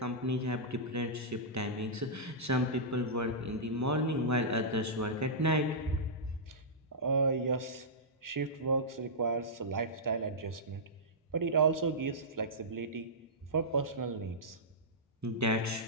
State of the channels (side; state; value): both; normal; correlation -0.14